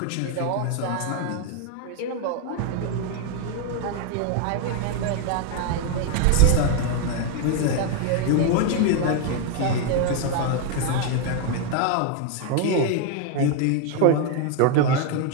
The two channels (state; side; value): different; both; correlation 0.01